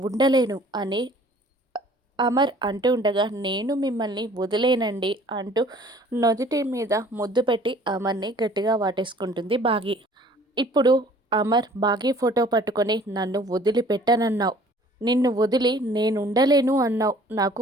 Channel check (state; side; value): normal; both; correlation 0.53